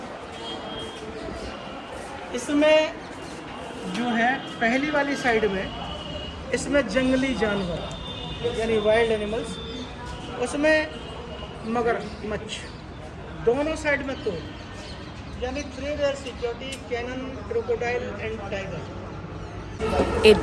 इसमें जो है पहली वाली साइड में, इसमें जंगली जानवर यानी वाइल्ड एनिमल्स, उसमें मगरमच्छ, दोनों साइड में तो यानी 3 layer security, cannon, crocodile and tiger.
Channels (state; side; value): identical; both; correlation 1.00